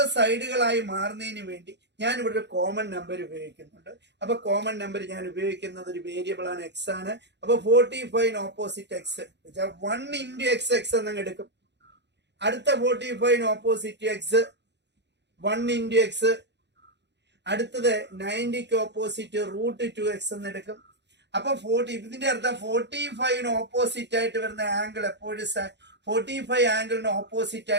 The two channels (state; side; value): late; left; 0.51 ms